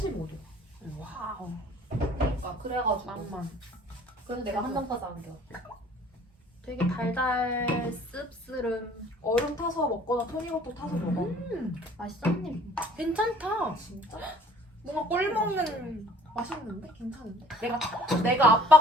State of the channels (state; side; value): normal; both; correlation 0.54